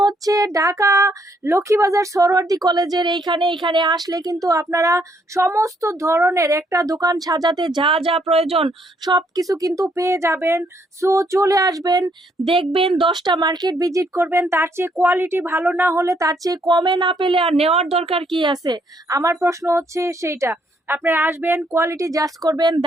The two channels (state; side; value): normal; both; correlation 0.71